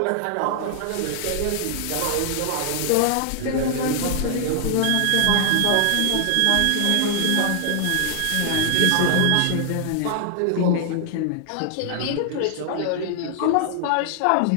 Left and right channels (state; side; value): different; both; correlation 0.00